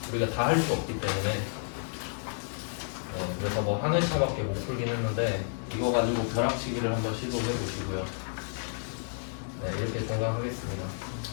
우리가 다 할 수 없기 때문에. 네, 그래서 뭐 한 회차밖에 못 풀긴 했는데 이거 가지고 벼락치기를 한번 시도해 보시고요. 네, 이렇게 종강하겠습니다.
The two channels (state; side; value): silent; right; 57 dB below the other